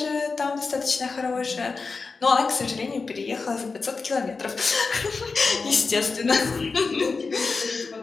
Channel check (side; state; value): right; quieter; 4.4 dB